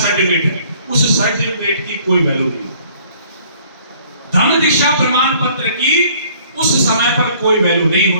सर्टिफिकेट है। उस सर्टिफिकेट की कोई वैल्यू नहीं। धम्म दीक्षा प्रमाण पत्र की उस समय पर कोई वैल्यू नहीं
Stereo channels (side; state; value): both; inverted; correlation -0.57